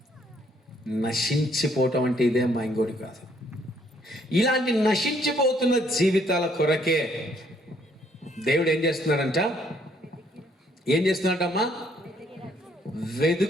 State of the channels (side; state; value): both; normal; correlation 0.67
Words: నశించిపోవటం అంటే ఇదే అమ్మా, ఇంకోటి కాదు. ఇలాంటి నశించిపోతున్న జీవితాల కొరకే దేవుడు ఏం చేస్తున్నాడంట? ఏం చేస్తున్నాడమ్మా?